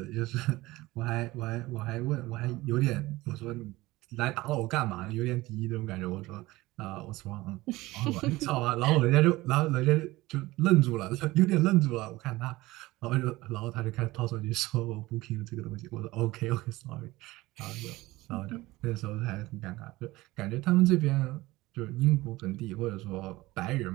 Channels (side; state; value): left; quieter; 19.3 dB